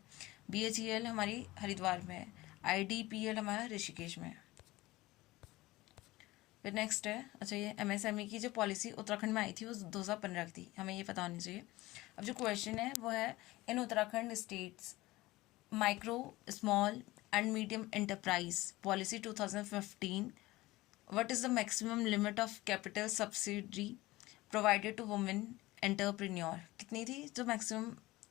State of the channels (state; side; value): quieter; right; 19.0 dB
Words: BHEL हमारी हरिद्वार में है। IDPL हमारा ऋषिकेश में है। फिर नेक्स्ट है, अच्छा ये MSME की जो पॉलिसी उत्तराखंड में आई थी वो 2015 की थी, हमें ये पता होनी चाहिए। अब जो क्वेश्चन है वो है, in Uttarakhand states micro small and medium enterprise policy 2015, what is the maximum limit of capital subsidy provided to women entrepreneur? कितनी थी जो मैक्सिमम